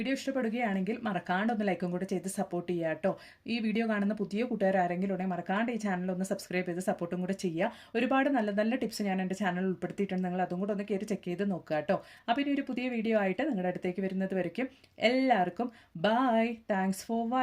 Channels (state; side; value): identical; both; correlation 1.00